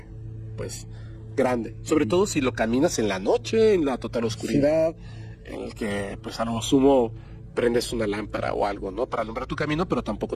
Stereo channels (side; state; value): both; identical; correlation 1.00